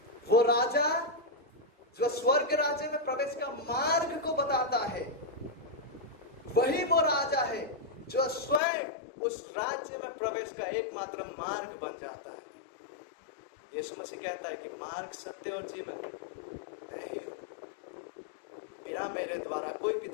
वो राजा जो स्वर्ग राज्य में प्रवेश का मार्ग को बताता है, वही वो राजा है जो स्वयं उस राज्य में प्रवेश का एकमात्र मार्ग बन जाता है। यीशु मसीह कहता है कि मार्ग, सत्य और जीवन नहीं हो, बिना मेरे द्वारा कोई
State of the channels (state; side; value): drops out; right; at 8.6 s